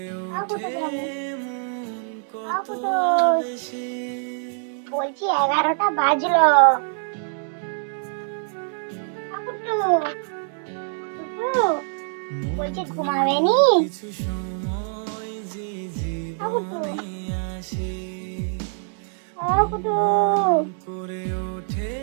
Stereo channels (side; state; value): left; silent; 62 dB below the other